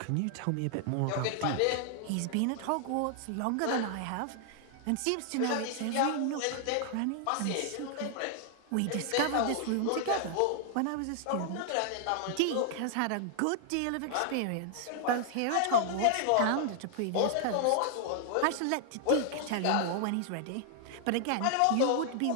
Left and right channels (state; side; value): different; both; correlation 0.00